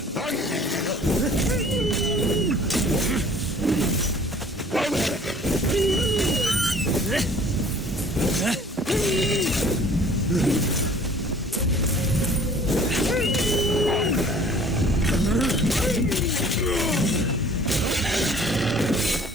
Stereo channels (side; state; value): both; normal; correlation 0.52